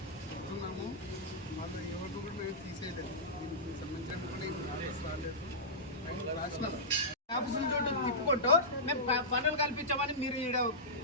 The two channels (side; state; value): both; normal; correlation -0.15